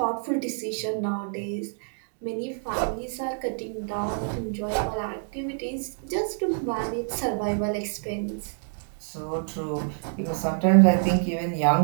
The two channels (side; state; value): left; silent; 60 dB below the other